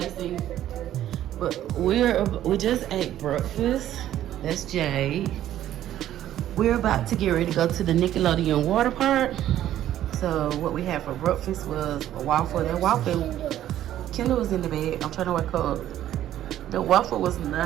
but we just ate breakfast. That's Jade. We're about to get ready to go to the Nickelodeon Waterpark. So what we had for breakfast was a waffle. That waffle, Kendall was in the bed. I'm trying to wake her up. The waffle was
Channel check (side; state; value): left; quieter; 12.2 dB